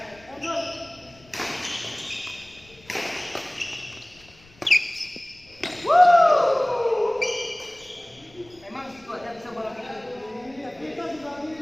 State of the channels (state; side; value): noise; left; rumble, 27 dB below the sound